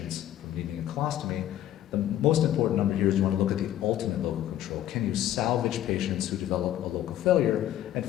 from needing a colostomy. The most important number here is you want to look at the ultimate local control. Can you salvage patients who develop a local failure? And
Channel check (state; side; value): quieter; right; 12.4 dB